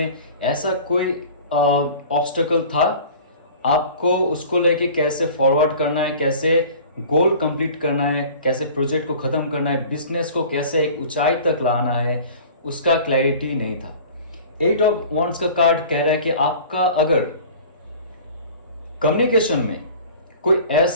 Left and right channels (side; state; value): both; inverted; correlation -0.43